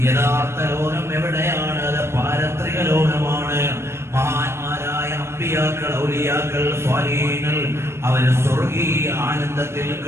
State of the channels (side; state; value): left; late; 0.13 ms